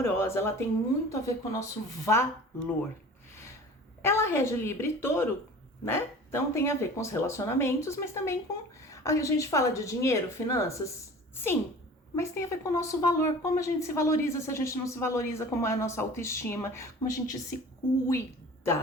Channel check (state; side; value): normal; both; correlation 0.42